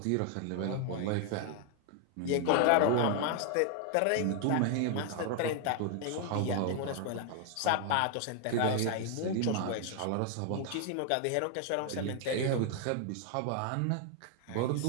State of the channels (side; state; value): both; different; correlation 0.00